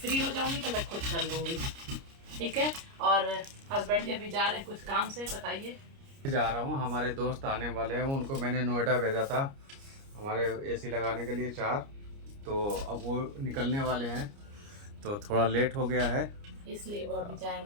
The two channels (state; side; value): late; left; 29 ms